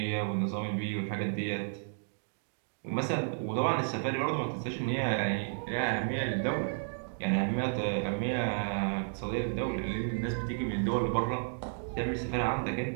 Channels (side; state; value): left; silent; digital silence